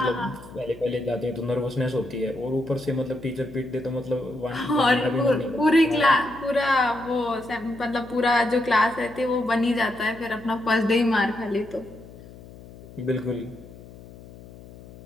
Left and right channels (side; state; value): left; noise; hum, 18 dB below the sound